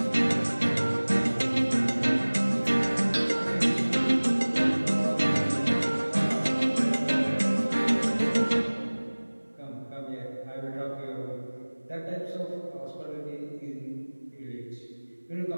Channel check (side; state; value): both; inverted; correlation -1.00